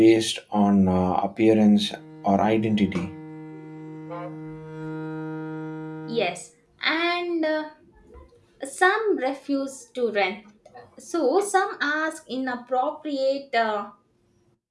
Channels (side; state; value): both; identical; correlation 1.00